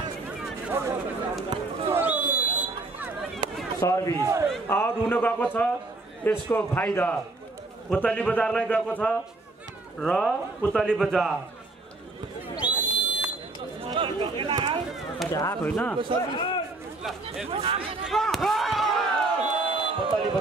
सर्भिस आउट हुन गएको छ। यसको फाइदा पुतली बजारलाई गएको छ र पुतली बजार आएको होइन पुतली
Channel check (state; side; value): quieter; left; 3.1 dB